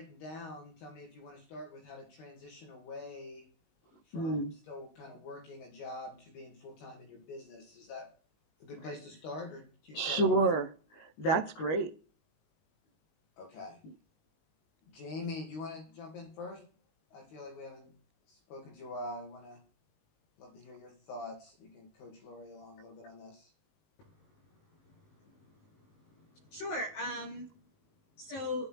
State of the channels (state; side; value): late; right; 19 ms